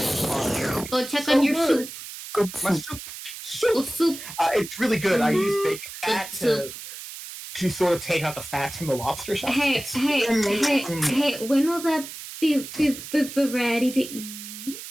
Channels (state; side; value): noise; right; hiss, 11 dB below the sound